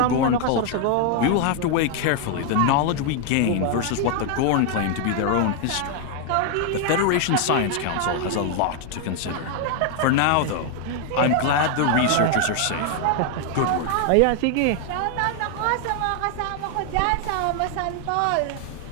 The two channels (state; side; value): different; both; correlation 0.00